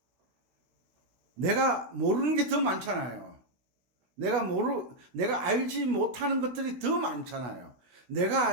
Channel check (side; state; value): left; late; 16 ms